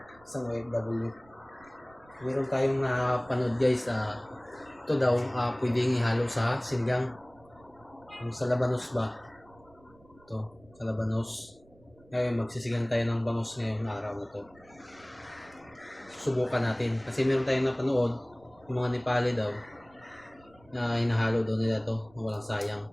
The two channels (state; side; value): noise; right; rumble, 27 dB below the sound